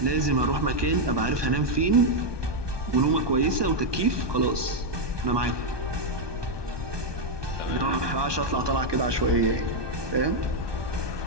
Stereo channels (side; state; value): left; late; 1.2 ms